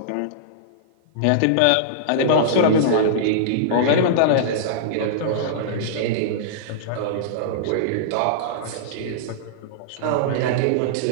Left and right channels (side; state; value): both; different; correlation -0.02